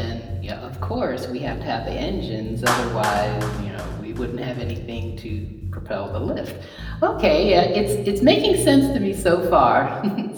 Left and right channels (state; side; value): identical; both; correlation 1.00